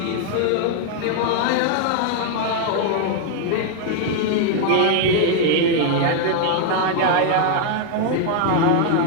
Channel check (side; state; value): both; different; correlation 0.00